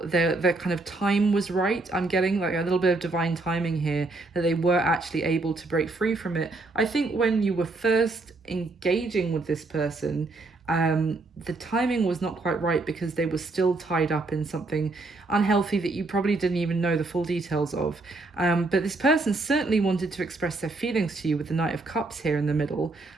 their kind of time was right. I'm getting like a little bit of divine timing here, that they were actually able to break free from it. I think when you were first engaging with this person, the timing was not quite right because they were still tied up in something unhealthy that you probably didn't even know the full details of. But this person certainly wanted to express their feelings to you with the Knight of Cups here in the middle,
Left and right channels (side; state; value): left; quieter; 3.3 dB